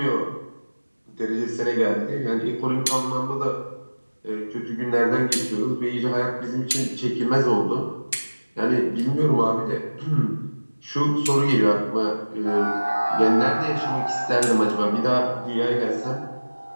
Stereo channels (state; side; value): inverted; both; correlation -1.00